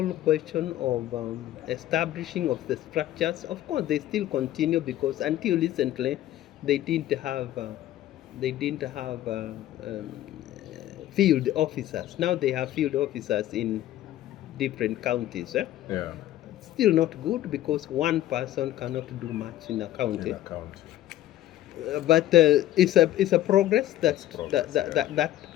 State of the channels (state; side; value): quieter; right; 13.6 dB